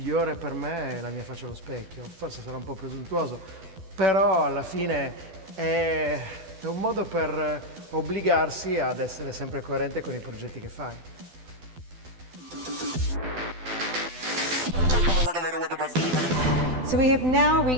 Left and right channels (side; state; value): left; late; 12 ms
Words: per me è la mia faccia allo specchio. Forse sarà un po' presuntuoso, però alla fine è un modo per obbligarsi ad essere sempre coerente con i progetti che fai. So we have now